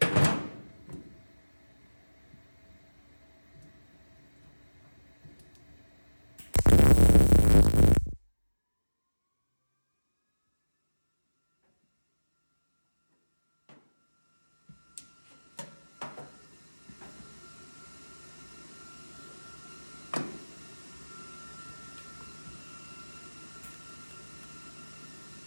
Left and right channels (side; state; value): both; inverted; correlation -1.00